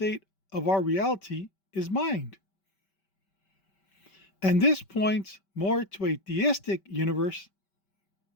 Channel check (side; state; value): right; late; 5.2 ms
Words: of our reality is mind. And this points more to a theistic universe